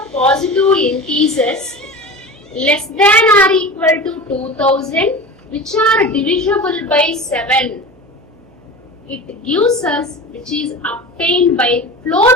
positive integers less than or equal to 2000, which are divisible by 7. It gives us, which is obtained by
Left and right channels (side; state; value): right; noise; hum, 28 dB below the sound